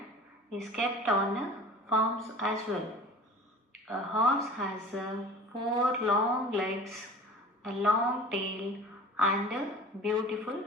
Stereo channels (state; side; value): normal; both; correlation 0.41